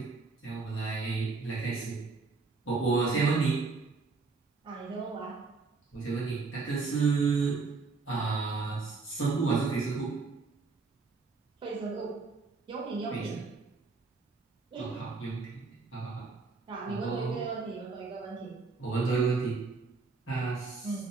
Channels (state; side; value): quieter; left; 4.2 dB